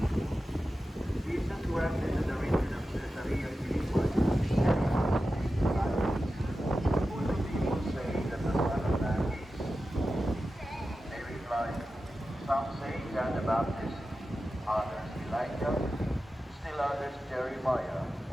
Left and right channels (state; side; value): normal; both; correlation 0.93